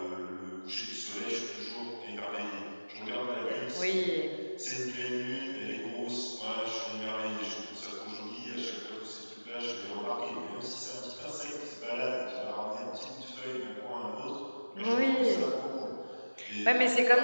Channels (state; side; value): inverted; both; correlation -1.00